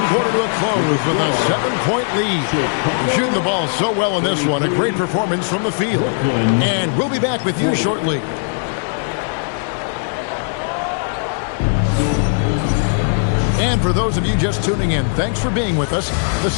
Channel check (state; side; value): silent; right; digital silence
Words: quarter to a close with a 7-point lead. They're shooting the ball so well in this one. A great performance from the field. And we'll be back with you shortly. And for those of you just tuning in, thanks for being with us. The